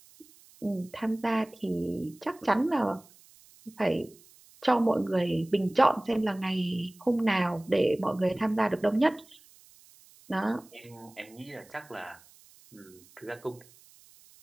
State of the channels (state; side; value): noise; right; hiss, 26 dB below the sound